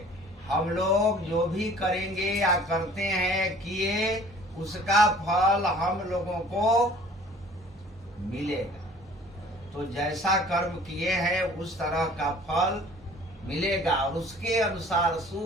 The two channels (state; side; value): normal; both; correlation 0.50